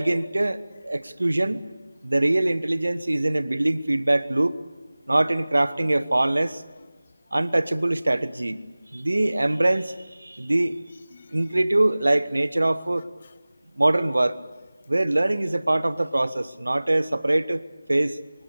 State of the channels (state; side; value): inverted; both; correlation -0.99